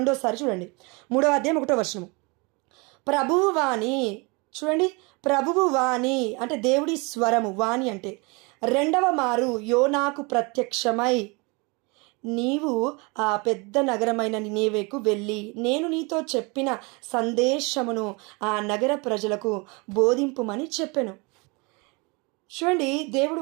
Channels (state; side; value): quieter; left; 28.7 dB